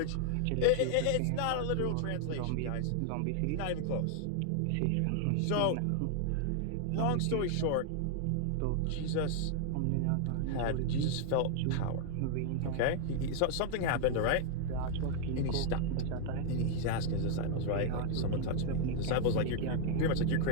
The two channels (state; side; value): different; both; correlation 0.00